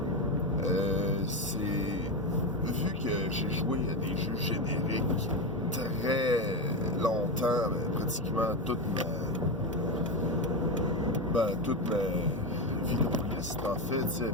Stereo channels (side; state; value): both; normal; correlation 0.14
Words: c'est... Vu que j'ai joué à des jeux génériques très longtemps, pratiquement toute ma vie de liste, en fait, tu sais,